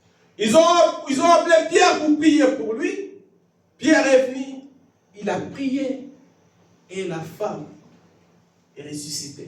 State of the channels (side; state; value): both; identical; correlation 1.00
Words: Ils ont appelé Pierre pour prier pour lui. Pierre est venu. Il a prié. Et la femme est